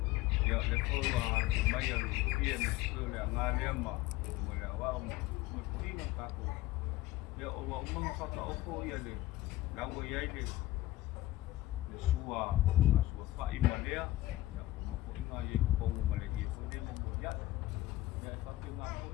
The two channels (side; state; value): right; quieter; 16.2 dB